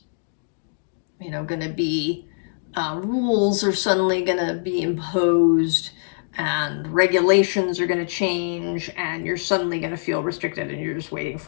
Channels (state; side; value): silent; right; digital silence